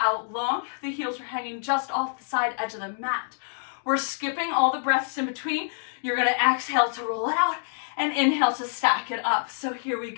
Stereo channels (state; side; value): silent; right; digital silence